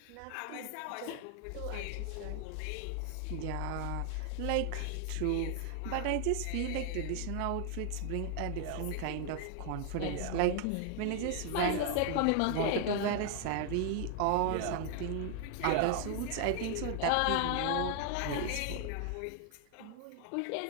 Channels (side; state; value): both; different; correlation 0.00